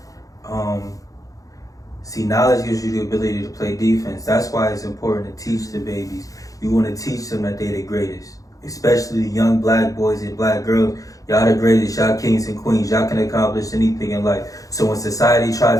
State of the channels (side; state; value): right; late; 0.17 ms